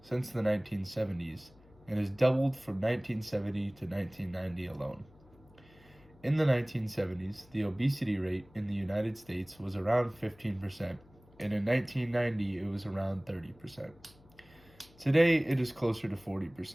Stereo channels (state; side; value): noise; left; hum, 26 dB below the sound